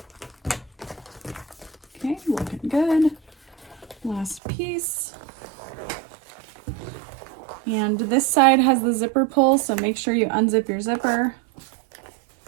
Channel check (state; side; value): drops out; left; at 4.4 s